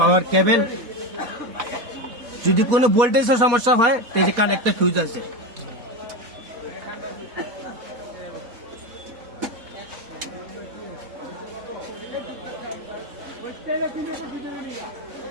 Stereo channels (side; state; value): left; late; 4.2 ms